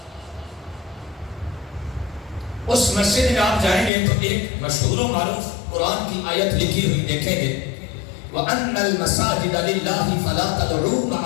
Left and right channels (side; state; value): right; drops out; at 3.9 s